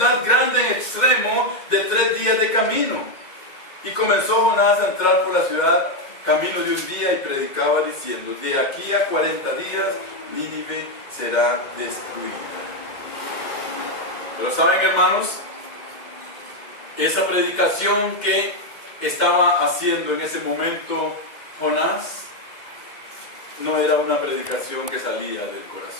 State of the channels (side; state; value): right; late; 2.1 ms